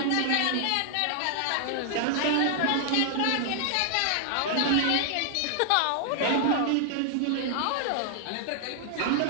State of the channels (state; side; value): different; both; correlation 0.00